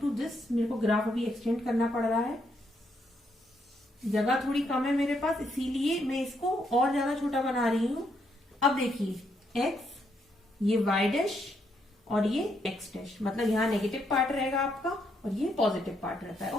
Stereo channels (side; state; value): both; normal; correlation 0.76